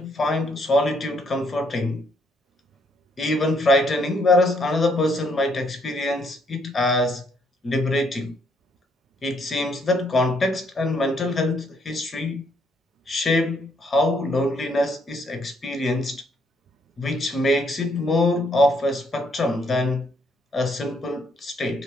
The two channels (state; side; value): normal; both; correlation 0.70